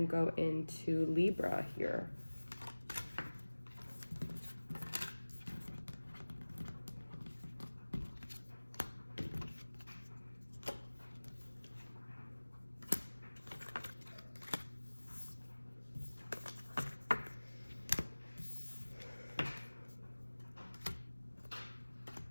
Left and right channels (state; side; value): inverted; both; correlation -1.00